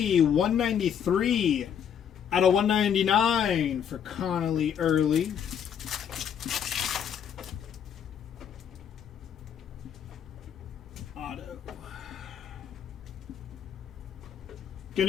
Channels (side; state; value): right; quieter; 8.4 dB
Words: 193 out of 199 for Connolly Early. Auto. Going